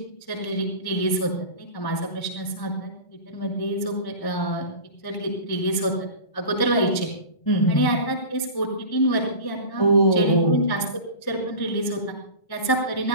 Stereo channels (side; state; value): right; late; 1.1 ms